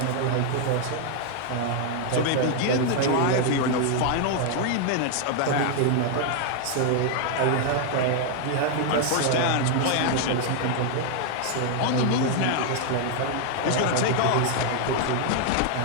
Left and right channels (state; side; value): different; both; correlation 0.00